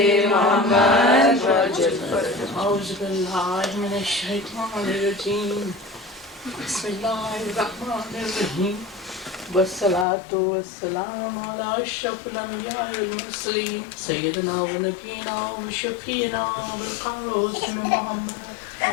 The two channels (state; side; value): drops out; right; at 10.1 s